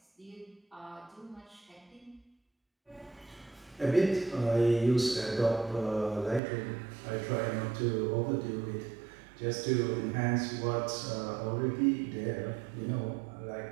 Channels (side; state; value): left; drops out; at 6.4 s